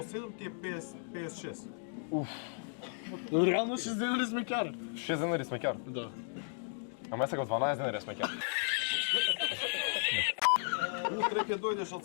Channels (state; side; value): silent; right; digital silence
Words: 7 ти е 56. Реално 6 денари сме кар. 6 денари сме ќар. Да. Ама сега 12 денари сме ќар. Утре ќе дојдеш од